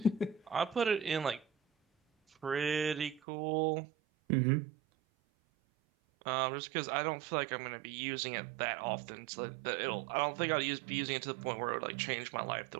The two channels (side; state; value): left; drops out; at 3.2 s